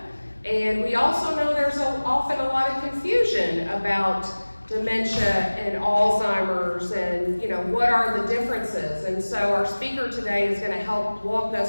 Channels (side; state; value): both; inverted; correlation -1.00